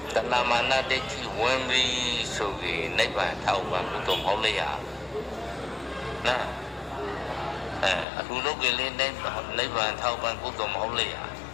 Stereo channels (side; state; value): right; drops out; at 8.1 s